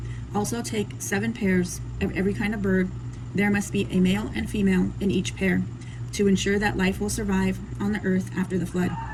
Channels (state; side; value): identical; both; correlation 1.00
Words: Also take 7 pairs of every kind of bird. There must be a male and female in each pair, to ensure that life will survive on the earth after the flood.